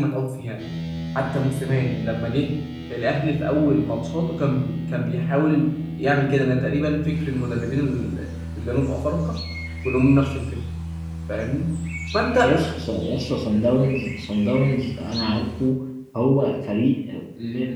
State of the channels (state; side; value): identical; both; correlation 1.00